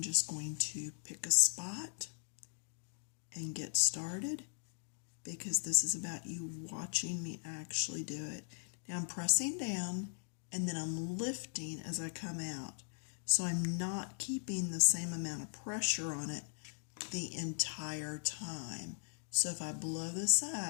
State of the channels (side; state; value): right; silent; digital silence